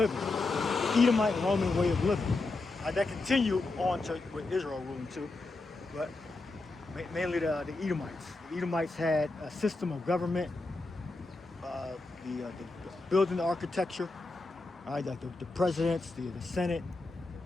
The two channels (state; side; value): quieter; right; 3.3 dB